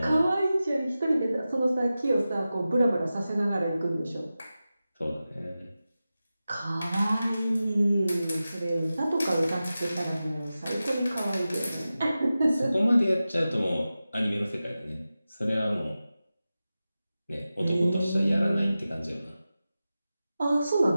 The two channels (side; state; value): both; inverted; correlation -0.94